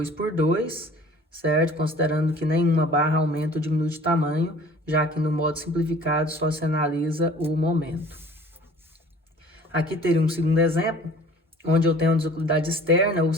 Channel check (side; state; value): both; normal; correlation 0.49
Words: certo? Considerando que nenhuma barra aumenta ou diminui de tamanho, já que no modo simplificado só se analisa o momento. Aqui teria um segundo exemplo, onde eu tenho uma deslocabilidade externa, ou